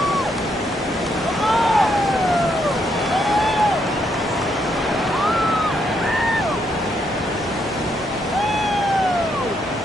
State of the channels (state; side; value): normal; both; correlation 0.75